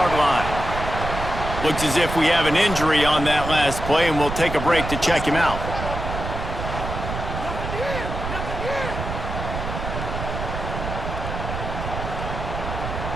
line. Looks as if we have an injury on that last play, and we'll take a break to check him out.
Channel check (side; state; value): right; noise; rumble, 5 dB below the sound